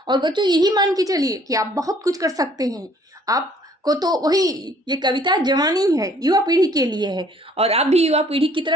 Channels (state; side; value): normal; both; correlation 0.59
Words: और बच्चों, यही मान के चलिए कि आप बहुत कुछ कर सकते हैं। आपको तो वही, ये कविता जवानी है, युवा पीढ़ी के लिए है और आप भी युवा पीढ़ी की